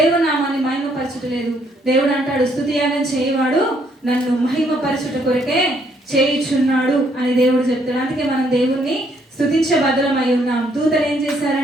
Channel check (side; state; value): both; normal; correlation 0.69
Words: నామాన్ని మహిమపరచట్లేదు. దేవుడు అంటాడు, స్తుతి యాగం చేయవాడు నన్ను మహిమపరచుట కొరకే చేయుచున్నాడు అని దేవుడు చెప్తాడు. అందుకే మనం దేవుణ్ణి స్తుతించే బదులమై ఉన్నాం. దూతలు ఏం